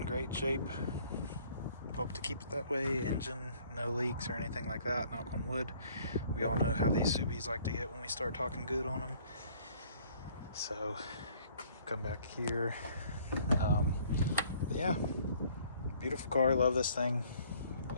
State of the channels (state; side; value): inverted; both; correlation -0.58